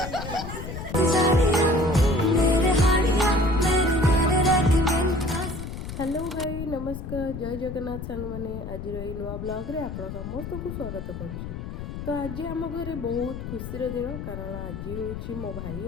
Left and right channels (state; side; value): noise; left; rumble, 8 dB below the sound